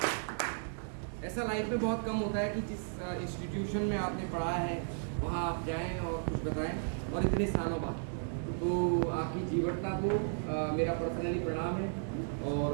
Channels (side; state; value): left; silent; digital silence